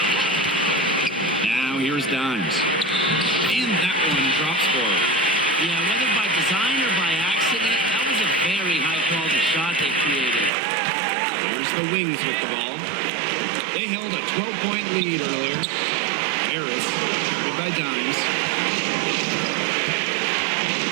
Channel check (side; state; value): left; drops out; at 10.5 s